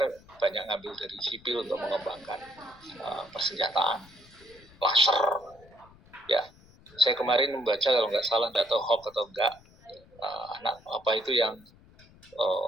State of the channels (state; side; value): noise; left; rumble, 25 dB below the sound